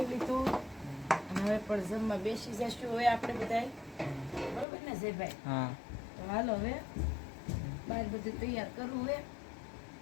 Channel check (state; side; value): drops out; right; at 4.7 s